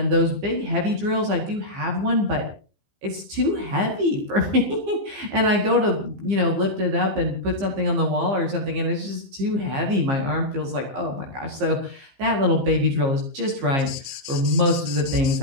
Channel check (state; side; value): late; left; 15 ms